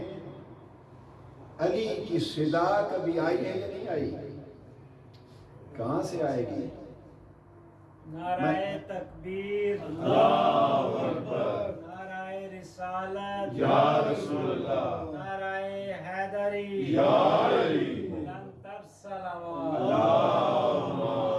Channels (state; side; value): identical; both; correlation 1.00